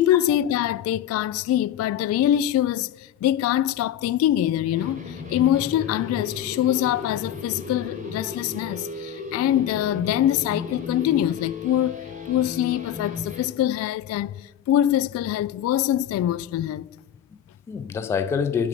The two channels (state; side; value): quieter; right; 10.8 dB